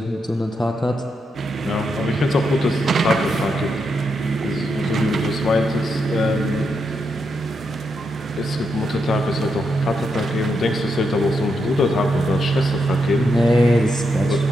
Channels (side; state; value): both; normal; correlation 0.82